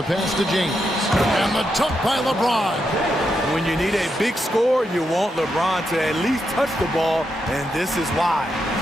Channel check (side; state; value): both; normal; correlation 0.83